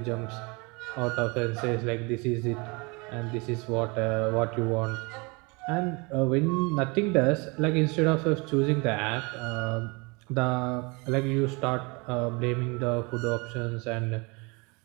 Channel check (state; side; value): quieter; left; 28.7 dB